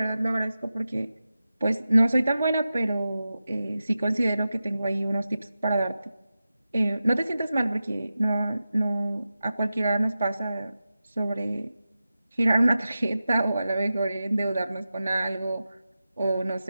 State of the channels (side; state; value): both; inverted; correlation -0.93